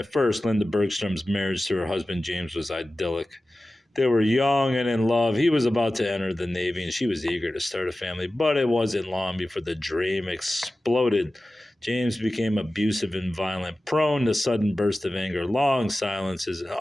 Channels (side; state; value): both; normal; correlation 0.95